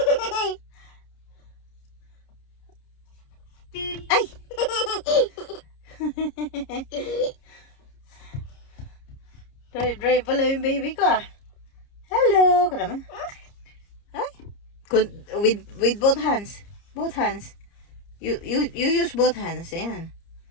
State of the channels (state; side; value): late; right; 30 ms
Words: Ay! Drive pala yung baby ko ah. Hello! Ka naman. Ay! With both hands. Both hands. You use both hands. Ayan.